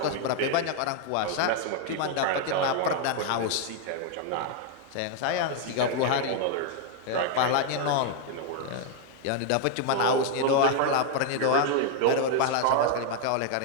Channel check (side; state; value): both; different; correlation 0.00